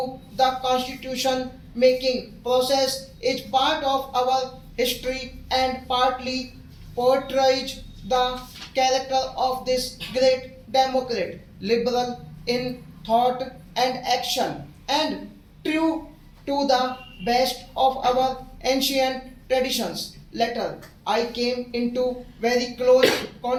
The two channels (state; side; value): identical; both; correlation 1.00